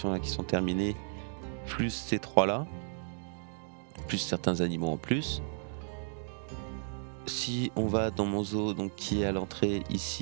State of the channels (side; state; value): left; silent; digital silence